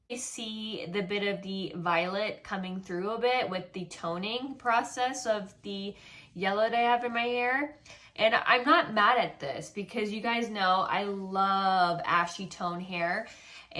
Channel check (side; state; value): both; identical; correlation 1.00